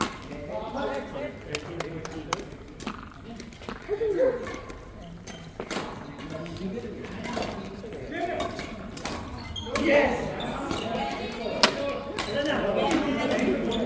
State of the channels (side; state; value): both; identical; correlation 1.00